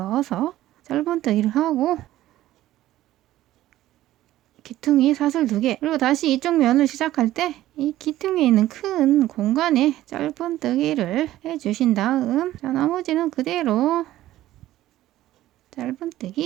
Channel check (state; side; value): quieter; left; 14.5 dB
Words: 짧은뜨기를 하고 귀퉁이 사슬 2개. 그리고 다시 이쪽 면을 시작할 때 이 귀퉁이에 있는 큰 공간에 짧은뜨기를 해주신 다음, 자, 나머지는 그대로